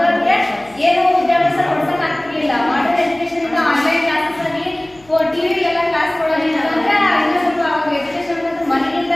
ಏನು ವಿದ್ಯಾಭ್ಯಾಸ ಕೊಡ್ಸಕ್ ಆಗ್ತಿರ್ಲಿಲ್ಲ. ಮಾಡಲ್ ಎಜುಕೇಶನ್ ಇಂದ ಆನ್ಲೈನ್ ಕ್ಲಾಸಸ್ ಆಗಿ ಟಿವಿ ಎಲ್ಲ ಕ್ಲಾಸ್ ಕೊಡೋದಿಲ್ಲ ಅಂದ್ರೆ ಇನ್ನೂ ಸ್ವಲ್ಪ ಅವಾಗ ಎಜುಕೇಶನ್ ಅನ್ನೋದು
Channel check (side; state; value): left; noise; hum, 29 dB below the sound